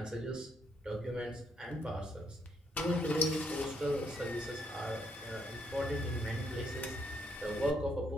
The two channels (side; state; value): both; normal; correlation 0.73